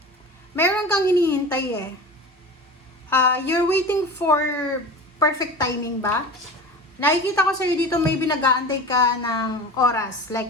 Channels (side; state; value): both; normal; correlation 0.33